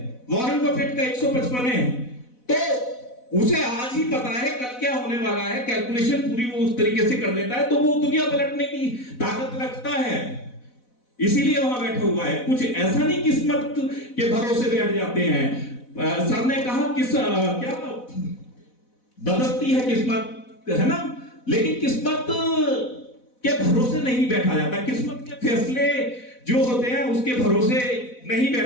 वॉरेन बफेट का 155 है। तो उसे आज ही पता है कल क्या होने वाला है, कैलकुलेशन पूरी वो उस तरीके से कर लेता है, तो वो दुनिया पलटने की ताकत रखता है, इसीलिए वहां बैठा हुआ है। कुछ ऐसा नहीं किस्मत के भरोसे बैठ जाते हैं। सर ने कहा क्या बदलती है किस्मत, है ना, लेकिन किस्मत के भरोसे नहीं बैठा जाता। किस्मत के फैसले जो होते हैं उसके भरोसे नहीं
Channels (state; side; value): late; right; 4.0 ms